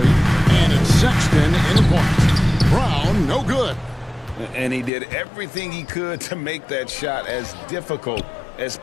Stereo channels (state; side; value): drops out; right; at 4.9 s